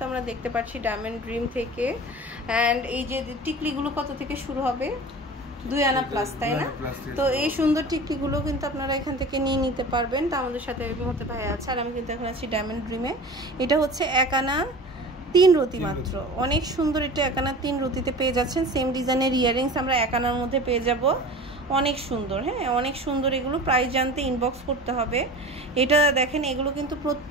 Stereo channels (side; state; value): both; normal; correlation 0.36